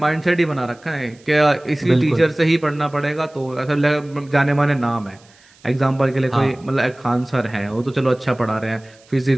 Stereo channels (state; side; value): noise; right; hiss, 29 dB below the sound